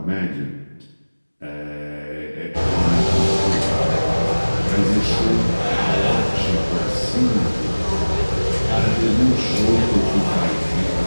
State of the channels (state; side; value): inverted; both; correlation -1.00